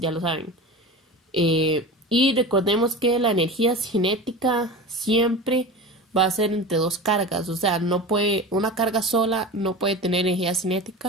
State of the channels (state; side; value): normal; both; correlation 0.30